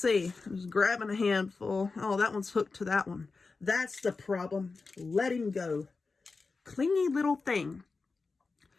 I'm just grabbing a handful. Oh, that one's hooked to that one. That's the problem. Let him go. Clingy little thing.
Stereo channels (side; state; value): right; quieter; 4.2 dB